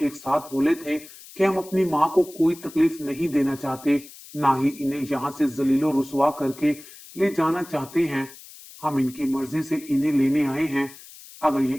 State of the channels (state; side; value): noise; left; hiss, 19 dB below the sound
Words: एक साथ बोले थे कि हम अपनी माँ को कोई तकलीफ नहीं देना चाहते, ना ही इन्हें यहाँ से जलीलो रुसवा करके ले जाना चाहते हैं। हम इनकी मर्जी से इन्हें लेने आए हैं। अगर ये